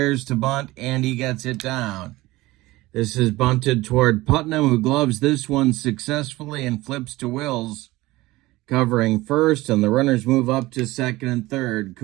to bunt, and he gets it down. This is bunted toward Putnam, who gloves this one successfully and flips to Wills, covering first, and the runners move up to second and third.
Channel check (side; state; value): left; quieter; 19.2 dB